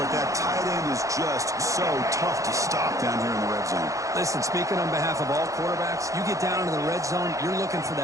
that tight end is just so tough to stop down here in the red zone. Listen, speaking on behalf of all quarterbacks, you get down into the red zone, you're looking for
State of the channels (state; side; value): late; left; 0.16 ms